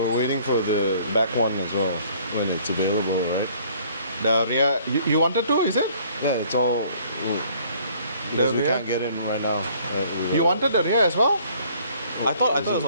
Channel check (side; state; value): both; inverted; correlation -0.58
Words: waiting for the back one as well. when it's available, right? The rear, you wanted to, is it? Yeah, it's all because we rear? can't get in right now. You wanted the rear as well? I thought it was